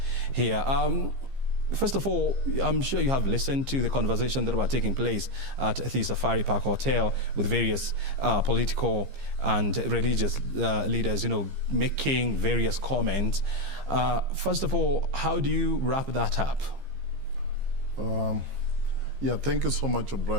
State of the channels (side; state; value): left; late; 15 ms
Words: here. First of all, I'm sure you have listened to the conversation that were taking place at the Safari Park Hotel with various political and religious leaders, making various comments. First of all, how do you wrap that up? Thank you so much,